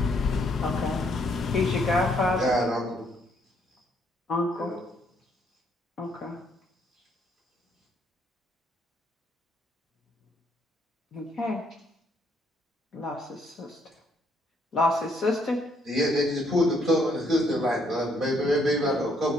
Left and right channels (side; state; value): both; normal; correlation 0.69